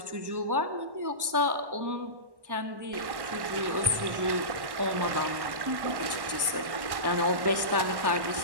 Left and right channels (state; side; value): late; left; 1.1 ms